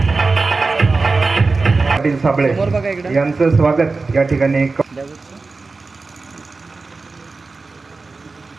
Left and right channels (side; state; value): left; quieter; 3.9 dB